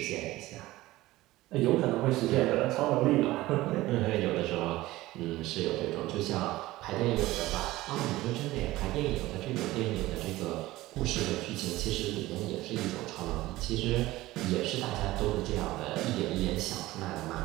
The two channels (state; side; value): quieter; left; 17.6 dB